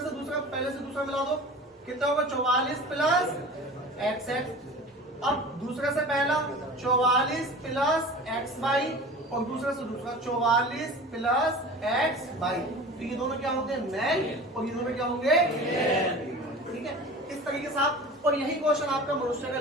पहले से दूसरा मिला दो, कितना होगा 44 प्लस एक्स एक्स। अब दूसरे से पहला 44 प्लस एक्स वाई, और दूसरे से दूसरा 44 प्लस एक्स वाई, तो ये दोनों क्या होते हैं, मेल, और ये दोनों क्या होंगे, ठीक है। इस तरीके से आप, और यही क्वेश्चन आपका मनुष्य का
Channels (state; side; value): normal; both; correlation 0.37